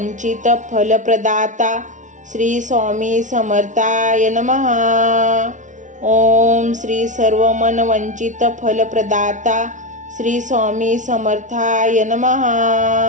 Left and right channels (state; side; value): late; left; 0.37 ms